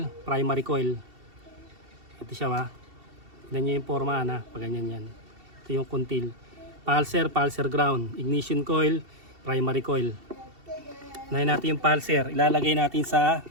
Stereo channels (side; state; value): left; late; 2.7 ms